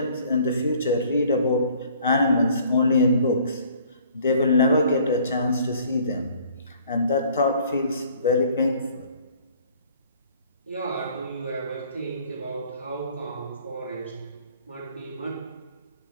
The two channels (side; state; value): both; inverted; correlation -0.56